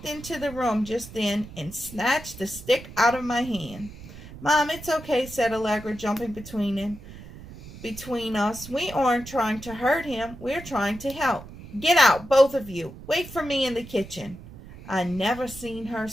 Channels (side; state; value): right; noise; rumble, 15 dB below the sound